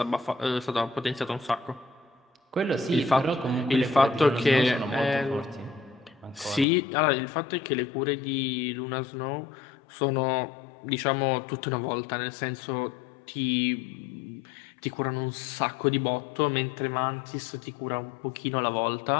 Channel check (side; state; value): right; drops out; at 6.7 s